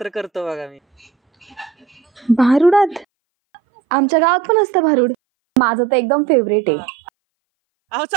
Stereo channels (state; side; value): drops out; left; at 3.1 s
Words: करतो बघा मी. भारुडात? आमच्या गावात पण असतं भारुड. माझं तर एकदम फेवरेट आहे. अहो